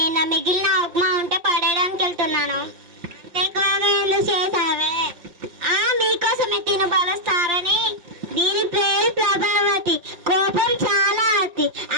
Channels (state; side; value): late; left; 5.8 ms